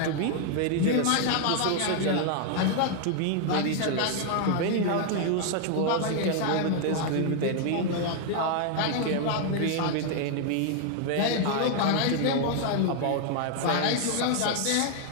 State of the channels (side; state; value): both; different; correlation 0.00